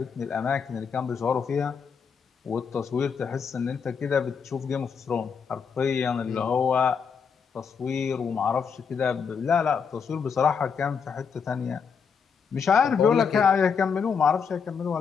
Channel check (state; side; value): quieter; right; 6.2 dB